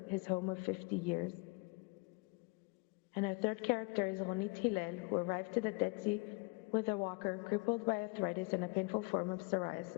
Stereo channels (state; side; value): quieter; right; 28.8 dB